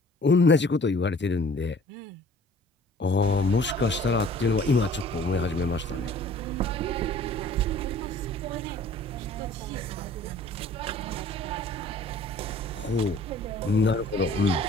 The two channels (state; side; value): normal; both; correlation 0.51